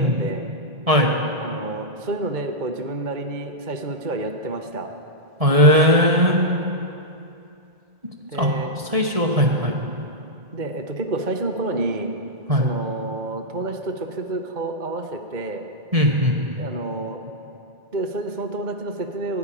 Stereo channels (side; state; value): left; late; 1.7 ms